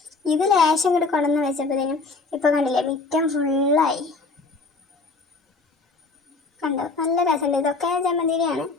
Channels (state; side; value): quieter; right; 3.9 dB